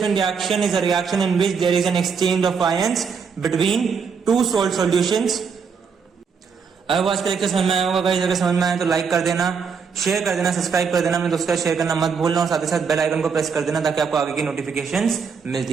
reaction is a reaction in which there is an exchange of ions between two salt solutions. अब आज का लेक्चर समझ में आया होगा गाइस, अगर समझ में आया तो लाइक कर देना, शेयर कर देना, सब्सक्राइब कर देना, अपने दोस्तों का शेयर करना मत भूलना और साथ ही साथ बेल आइकन को प्रेस कर देना ताकि आपको आगे की नोटिफिकेशंस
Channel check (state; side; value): quieter; left; 5.9 dB